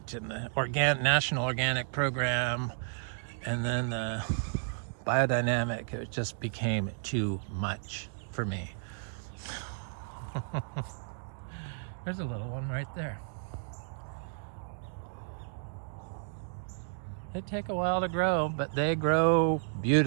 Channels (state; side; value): silent; left; digital silence